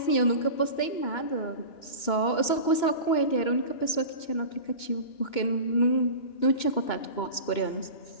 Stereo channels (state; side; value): late; right; 2.9 ms